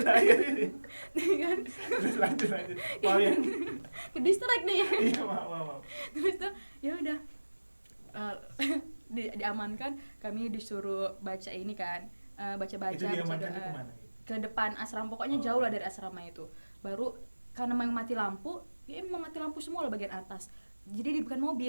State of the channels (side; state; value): both; inverted; correlation -1.00